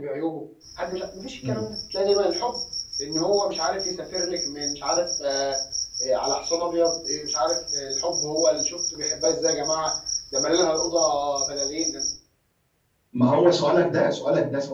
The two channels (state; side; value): identical; both; correlation 1.00